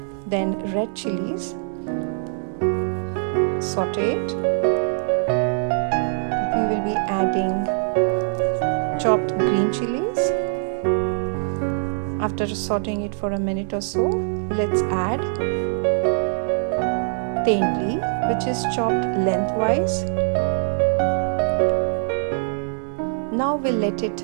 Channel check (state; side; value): silent; left; digital silence